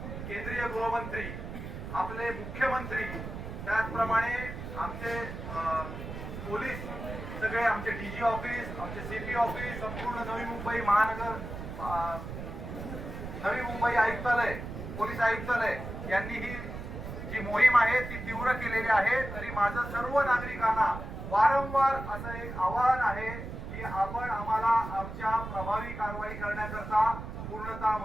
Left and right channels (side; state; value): right; noise; rumble, 8 dB below the sound